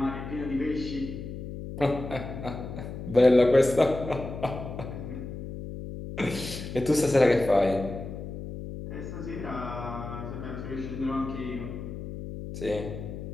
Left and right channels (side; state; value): left; noise; hum, 8 dB below the sound